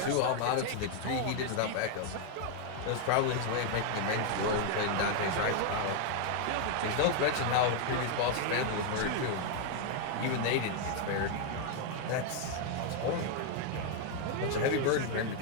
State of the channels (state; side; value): different; both; correlation 0.00